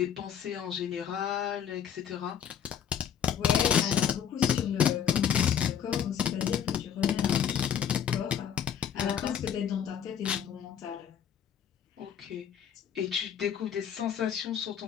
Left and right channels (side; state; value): right; quieter; 8.7 dB